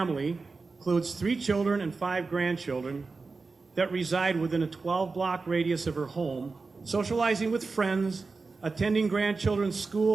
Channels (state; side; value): quieter; left; 4.1 dB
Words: includes 3 children and 5 grandchildren that reside within a 12-block radius of her home, socializing with friends, attending grandchildren's